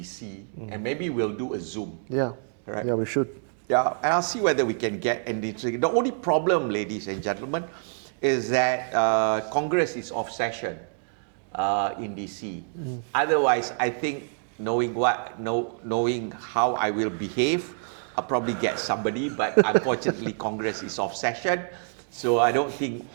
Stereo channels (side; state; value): left; silent; digital silence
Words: and maybe we'll do a Zoom. Yeah. Right? Yeah, we should. Yeah, and I'll see whether we can get anything. The only problem, ladies and gentlemen, is that Congress is off session in DC. Otherwise, I think knowing how I will behave, I'll probably get somebody, but unfortunately Congress is off session, so I don't think,